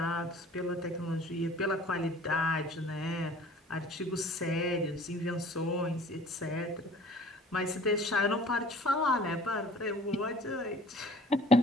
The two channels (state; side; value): normal; both; correlation 0.49